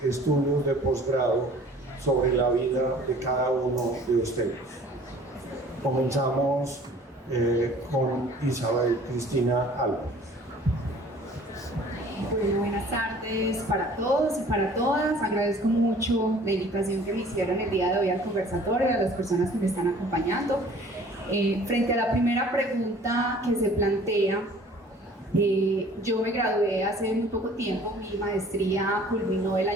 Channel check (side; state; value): both; normal; correlation 0.50